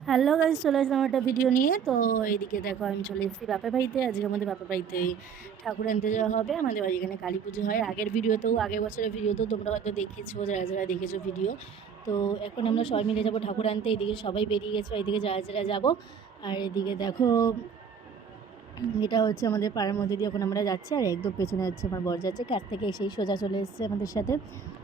Hello guys, চলে আসলাম একটা video নিয়ে। তো এইদিকে দেখো, আমি চলে এসেছি বাপের বাড়িতে। আজকে আমাদের বাপের বাড়িতে ঠাকুর আনতে যাওয়া হবে। আমাদের বাড়ি এখানে কালী পুজো হয়। আগের বছরের ভিডিওতেও তোমরা হয়তো দেখেছো, যারা যারা দেখেছো ভিডিও। তো এখন আমরা সবাই মিলে যাবো ঠাকুর আনতে। এইদিকে সবাই বেরিয়ে গেছো, এইদিকে যারা যারা যাবো। আর এদিকে দেখো, এটা হচ্ছে আমাদের পাড়ার মধ্যে দিয়ে এখন আমরা যাচ্ছি। আর একদম পেছনে হচ্ছে আমার বর যাচ্ছে, কাছ থেকে এসেই সোজা চলে এসেছে আমাদের সাথে।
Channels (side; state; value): left; quieter; 6.8 dB